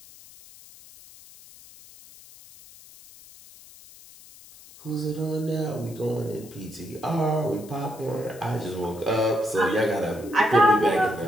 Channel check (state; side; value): noise; left; hiss, 21 dB below the sound